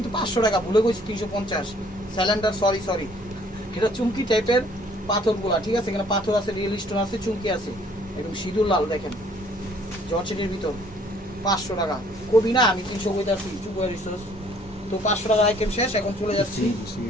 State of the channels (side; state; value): both; normal; correlation 0.60